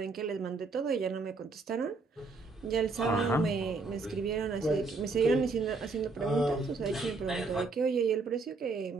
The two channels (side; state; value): left; quieter; 3.9 dB